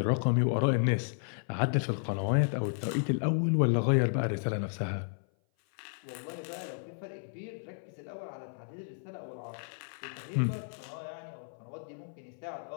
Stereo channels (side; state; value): right; silent; 56 dB below the other